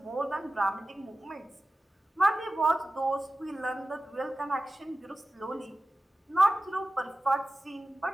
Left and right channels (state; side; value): normal; both; correlation 0.95